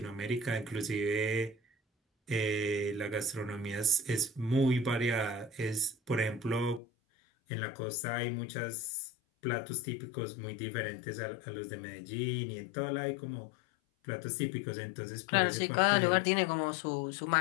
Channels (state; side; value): drops out; right; at 6.8 s